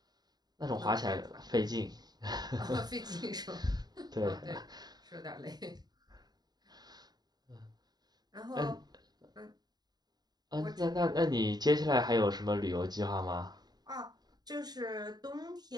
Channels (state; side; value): late; left; 0.20 ms